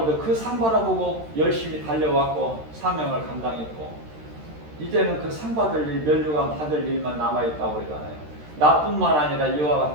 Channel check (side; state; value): left; late; 13 ms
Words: 그 상 바라보고 열심히 달려왔고 사명을 감당했고 이제는 그 상 받을 일, 면류관 받을 일만 남아있다고 그러잖아요. 나뿐만 아니라